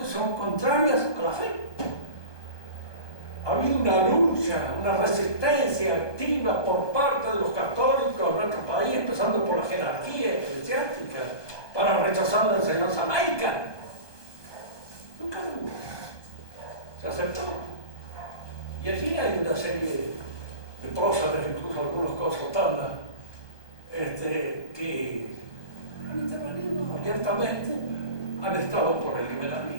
son contrarias a la fe. Ha habido una lucha, una resistencia activa por parte de los católicos en nuestro país, empezando por la jerarquía eclesiástica, para rechazar la enseñanza laica. Nunca hubo. Se aceptó. Y allí hay una serie de próceres, incluso algunos consultantes, que han intervenido abiertamente, han estado por el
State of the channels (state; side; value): late; right; 1.2 ms